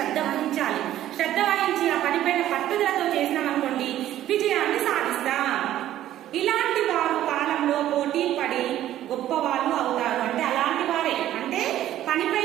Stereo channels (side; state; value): left; quieter; 12.8 dB